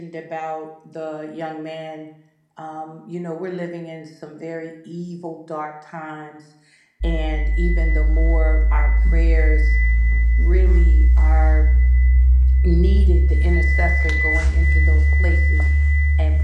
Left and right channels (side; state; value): both; identical; correlation 1.00